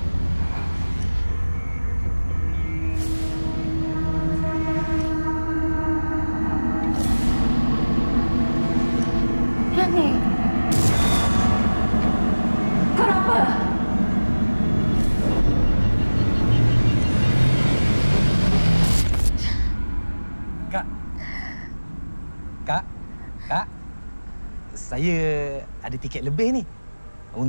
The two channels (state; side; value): inverted; both; correlation -1.00